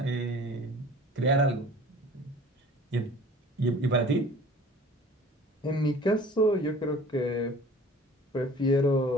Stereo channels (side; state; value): both; normal; correlation 0.47